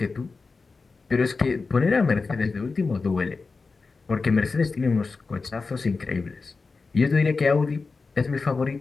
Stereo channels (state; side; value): quieter; right; 4.2 dB